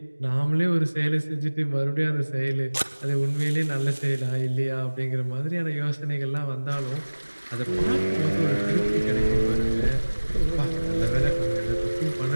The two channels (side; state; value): both; inverted; correlation -1.00